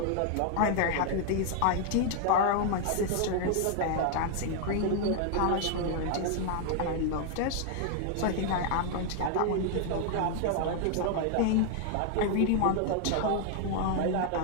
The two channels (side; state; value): both; different; correlation 0.00